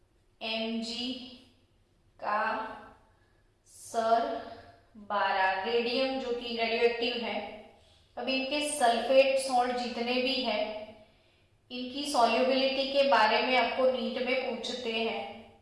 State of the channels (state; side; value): identical; both; correlation 1.00